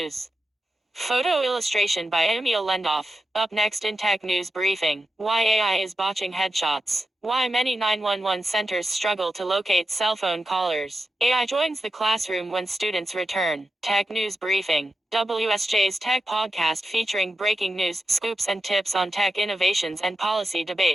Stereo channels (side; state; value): both; normal; correlation 0.90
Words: Photo illustration by Emil Lendoff. Up next in Tech News Briefing. Why AI is botching headshots. Why many 911 centers struggle to locate cell phone callers. AI joins the classroom when students return. Tech News Briefing. WSJ's Tech Podcast featuring breaking news, scoops and tips on tech innovations and policy